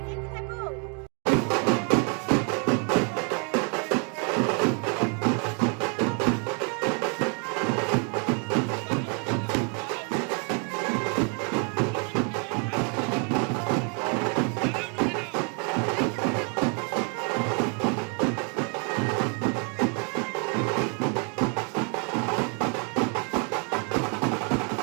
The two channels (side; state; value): left; quieter; 36.5 dB